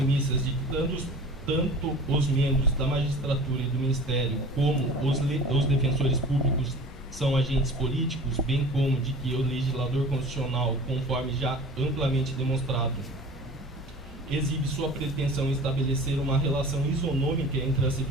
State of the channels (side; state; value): both; normal; correlation 0.41